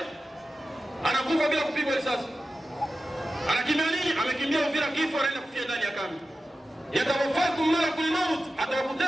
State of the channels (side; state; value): both; normal; correlation 0.93